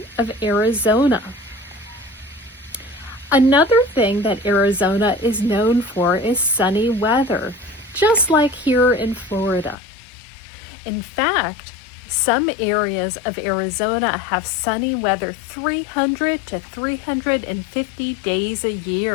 of Arizona. Another thing that Arizona is known for is sunny weather, just like here in Florida. In fact, some areas of Arizona have sunny weather 300 to 350 days a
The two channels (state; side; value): drops out; right; at 9.8 s